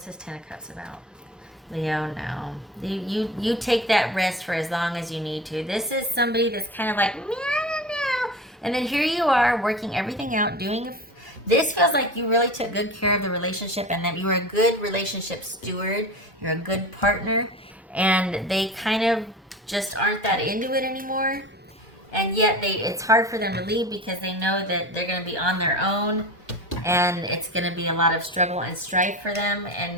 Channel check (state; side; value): normal; both; correlation 0.32